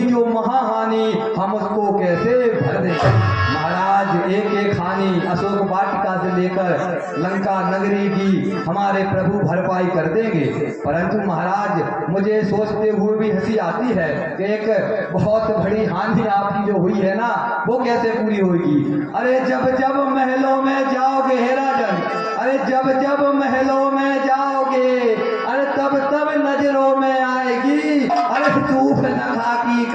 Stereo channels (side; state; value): both; identical; correlation 1.00